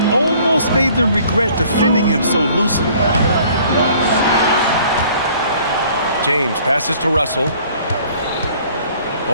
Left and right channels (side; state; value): both; inverted; correlation -0.55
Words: almost made them regret defending him so loosely. James passes to Russell.